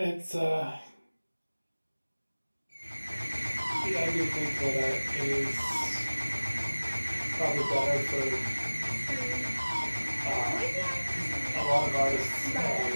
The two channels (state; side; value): inverted; both; correlation -1.00